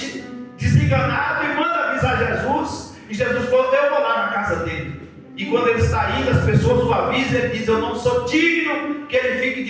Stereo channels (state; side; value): identical; both; correlation 1.00